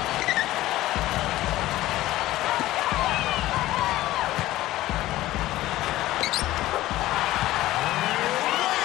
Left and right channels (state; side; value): quieter; right; 16.0 dB